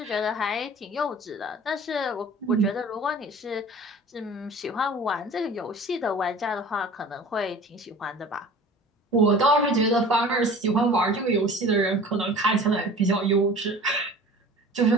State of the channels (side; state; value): both; normal; correlation 0.42